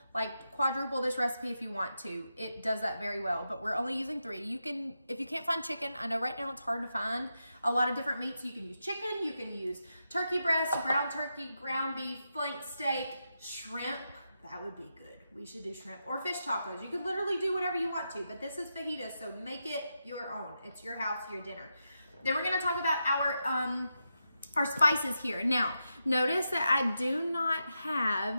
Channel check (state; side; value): inverted; both; correlation -0.87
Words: quadruple this recipe if you want to. It does that very well, but we're only using 3. You can, if you can't find chicken, I know right now it's hard to find a lot of different meats. You can use chicken, you can use turkey breast, ground turkey, ground beef, flank steak, shrimp. That would be good. We should do shrimp or fish tacos. You could literally do whatever you want to, but this is fajitas, so make it your own. It's your house, your dinner. Then we're gonna talk about our spices here. Now, notice that I do not